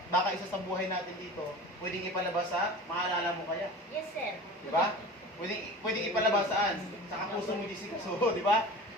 baka isa sa buhay natin dito, pwedeng ipalabas sa, maalala mo kaya. Yes, sir. Di ba? Pwedeng ipalabas saan? Sa kapuso mo, Jessica. So, di ba?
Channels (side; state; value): both; normal; correlation 0.36